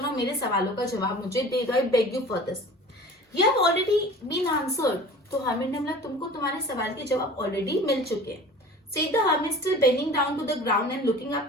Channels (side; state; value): both; normal; correlation 0.41